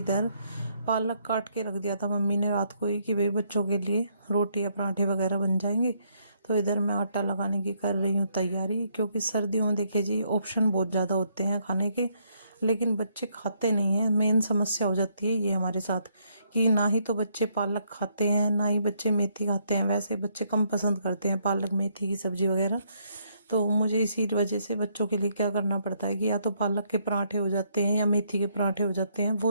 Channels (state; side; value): inverted; both; correlation -0.72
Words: पालक काट के रख दिया था मम्मी ने रात को ही कि भाई बच्चों के लिए रोटी या पराठे वगैरह बन जाएंगे। तो इधर मैं आटा लगाने की कर रही हूँ तैयारी, क्योंकि सर्दियों में देखिए जी ऑप्शन बहुत ज़्यादा होते हैं खाने के, लेकिन बच्चे खाते नहीं हैं। मेन समस्या हो जाती है ये हमारे साथ कि ना ही तो बच्चे पालक खाते हैं, ना ही बच्चे मेथी खाते हैं। वैसे बच्चे कम पसंद करते हैं पालक मेथी की सब्जी वगैरह। तो मुझे इसी वजह से बच्चों के लिए क्या करना पड़ता है कि या तो पालक के पराठे हो जाते हैं या मेथी के पराठे हो जाते हैं,